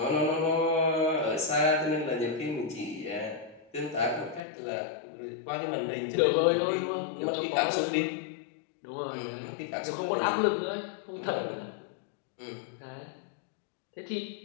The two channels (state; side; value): drops out; right; at 4.4 s